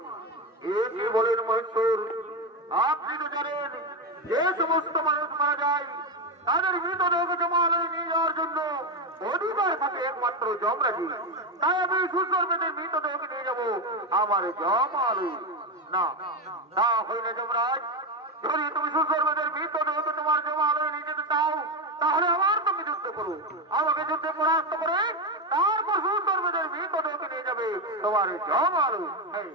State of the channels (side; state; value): both; normal; correlation 0.12